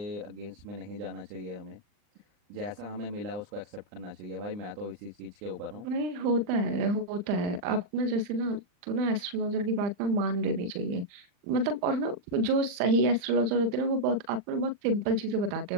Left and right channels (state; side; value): late; left; 40 ms